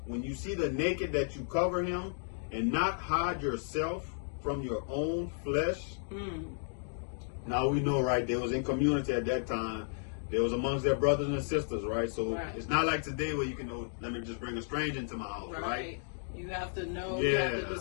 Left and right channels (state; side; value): silent; right; digital silence